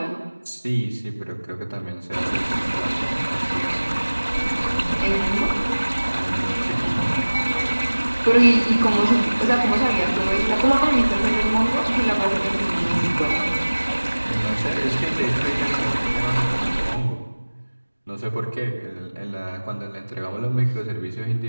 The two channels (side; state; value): both; inverted; correlation -1.00